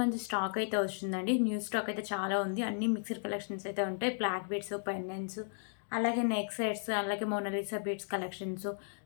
మంచి స్టాక్ అయితే వస్తుందండి. న్యూ స్టాక్ అయితే చాలా ఉంది. అన్ని మిక్స్డ్ కలెక్షన్స్ అయితే ఉంటాయి. బ్లాక్ బీడ్స్, పెండెంట్స్, అలాగే నెక్ సెట్స్, అలాగే మోనాలిసా బీడ్స్ కలెక్షన్స్.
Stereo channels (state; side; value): silent; right; digital silence